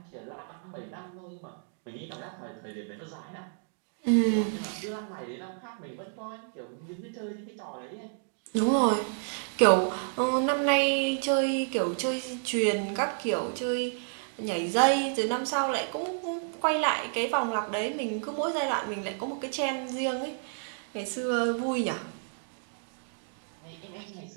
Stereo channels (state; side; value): silent; left; digital silence